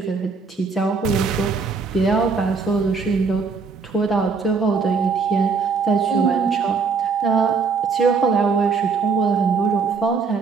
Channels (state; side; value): quieter; left; 5.0 dB